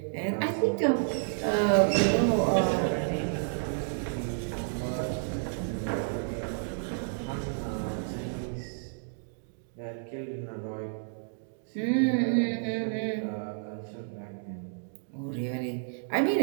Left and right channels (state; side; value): silent; left; digital silence